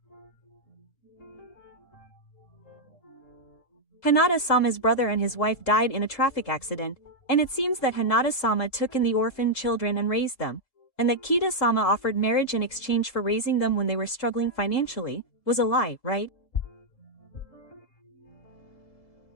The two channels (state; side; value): late; right; 3.7 ms